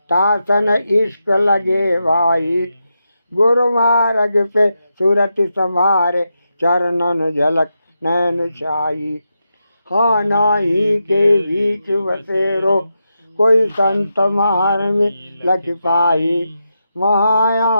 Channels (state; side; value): inverted; both; correlation -0.87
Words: तासन इश्क लगे भाई। गुरु मार्ग पे सूरत संभारे चरणन झलक नैन छाई। हाँ नाही के बीच बसेरो कोई संत मार में लख पाई।